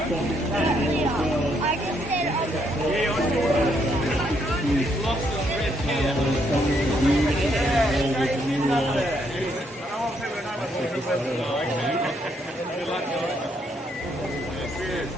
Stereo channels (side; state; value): both; normal; correlation 0.73